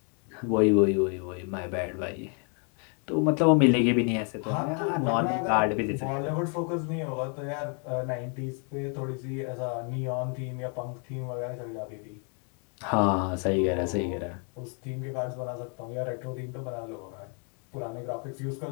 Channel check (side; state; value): right; quieter; 39.6 dB